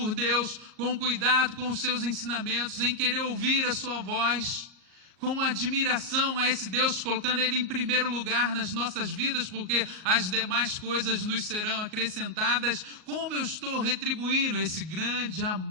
Deus, com cuidado com os seus ensinamentos, em querer ouvir a sua voz, com admiração a esse Deus, colocando Ele em primeiro lugar nas nossas vidas, porque as demais coisas nos serão acrescentadas. Como eu estou retribuindo esse grande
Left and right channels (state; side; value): late; left; 38 ms